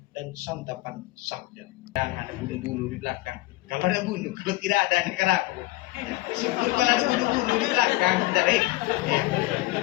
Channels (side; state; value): right; quieter; 19.7 dB